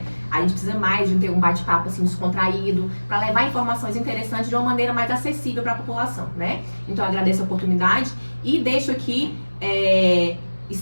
A gente precisa mais de ter um bate-papo assim descontraído, para levar informações interessantes de uma maneira mais acessível para a população, né? Então eu agradeço a oportunidade e deixo aqui,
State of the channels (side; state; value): both; inverted; correlation -1.00